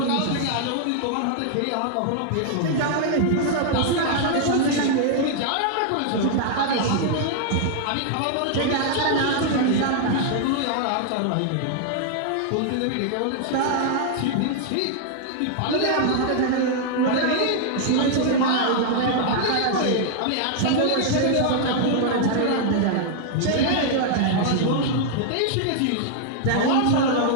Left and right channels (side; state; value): both; different; correlation -0.01